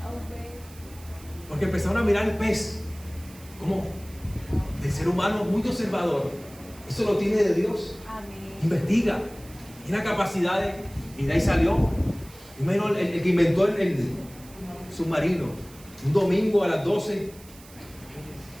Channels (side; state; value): right; noise; hiss, 22 dB below the sound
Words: Porque empezaron a mirar el pez como el ser humano muy observador. Eso lo tiene de Dios. Investiga, tiene capacidades y de ahí salió. Primero el que inventó el submarino, un domingo a las 12